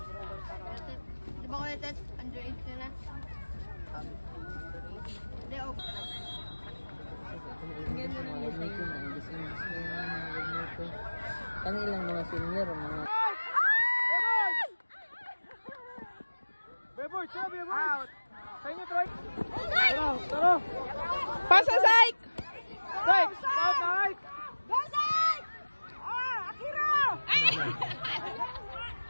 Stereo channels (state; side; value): inverted; both; correlation -1.00